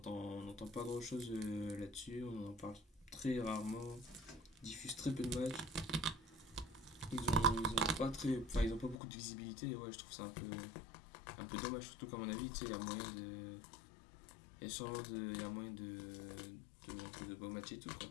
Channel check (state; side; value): drops out; right; at 9.0 s